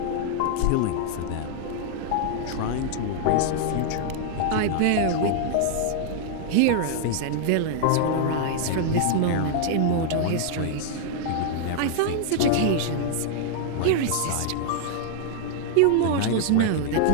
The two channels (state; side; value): different; both; correlation -0.01